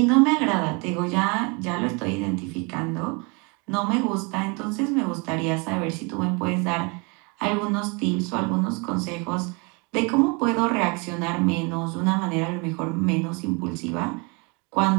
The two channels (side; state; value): left; quieter; 31.0 dB